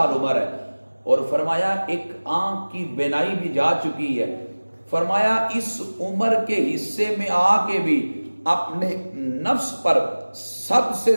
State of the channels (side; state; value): both; inverted; correlation -1.00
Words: عمر ہے, اور فرمایا ایک آنکھ کی بینائی بھی جا چکی ہے. فرمایا اس عمر کے حصے میں آ کے بھی اپنے نفس پر سب سے